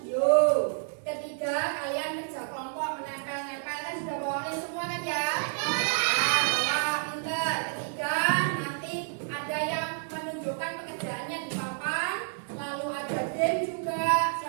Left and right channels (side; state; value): left; silent; digital silence